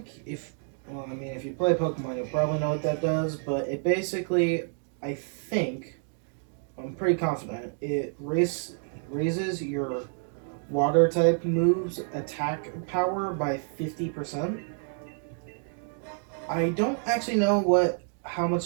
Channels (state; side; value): silent; left; 56 dB below the other